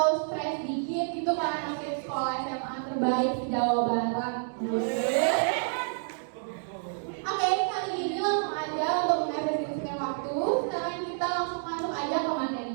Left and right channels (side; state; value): left; silent; digital silence